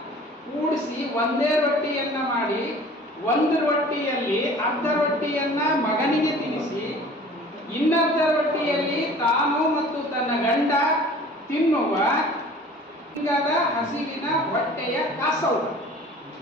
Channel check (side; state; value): both; normal; correlation 0.46